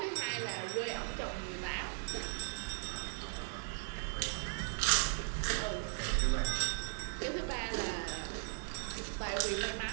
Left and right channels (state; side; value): silent; left; digital silence